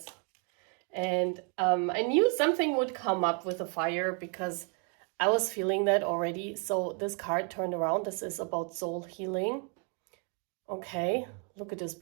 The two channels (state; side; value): quieter; left; 38.5 dB